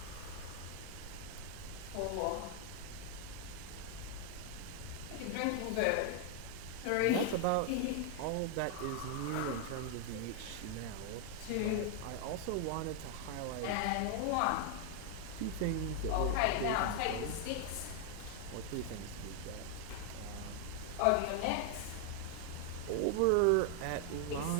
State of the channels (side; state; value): both; different; correlation 0.00